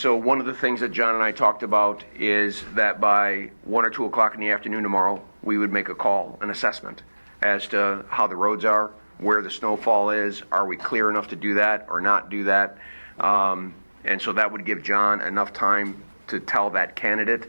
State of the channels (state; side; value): inverted; both; correlation -1.00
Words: one of the things that John and I talked about is that by 1 or 2 o'clock in the afternoon tomorrow, we would make a call, an assessment, as to how the roads are, where the snowfall is, are we clear enough to do that or not do that? And so that would give John enough time to tell that